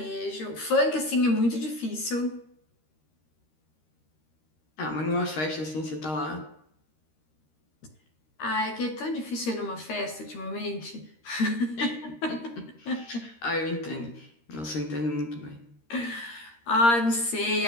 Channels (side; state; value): right; late; 13 ms